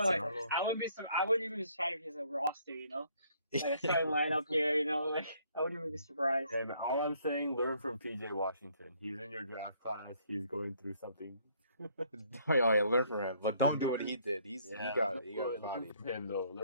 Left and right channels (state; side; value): inverted; both; correlation -0.65